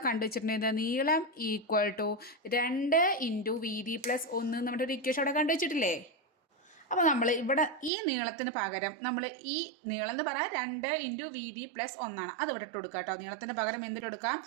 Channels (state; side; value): drops out; left; at 7.9 s